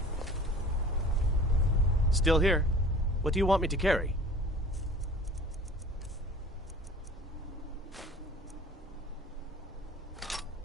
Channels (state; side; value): normal; both; correlation 0.46